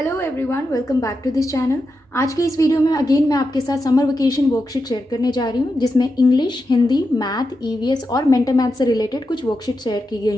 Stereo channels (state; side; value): normal; both; correlation 0.88